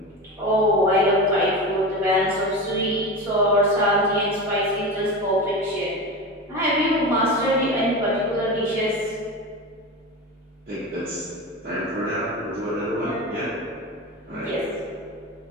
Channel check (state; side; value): normal; both; correlation 0.25